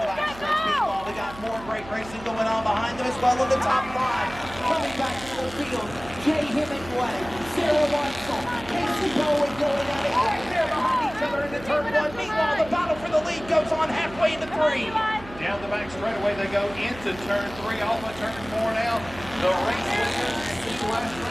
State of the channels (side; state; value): right; noise; hum, 16 dB below the sound